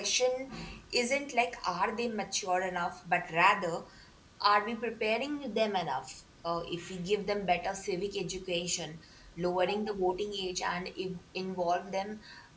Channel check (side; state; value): both; identical; correlation 1.00